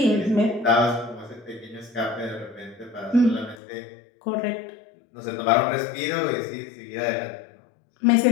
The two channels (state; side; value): drops out; right; at 3.6 s